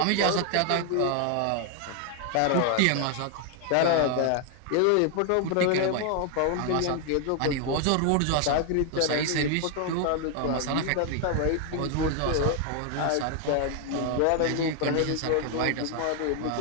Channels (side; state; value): both; different; correlation 0.00